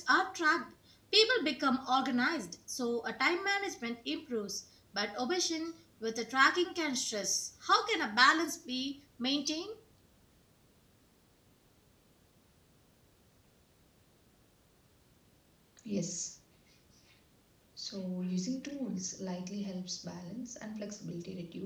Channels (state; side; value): identical; both; correlation 1.00